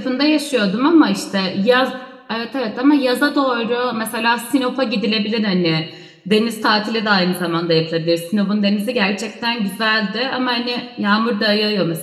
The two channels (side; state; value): both; identical; correlation 1.00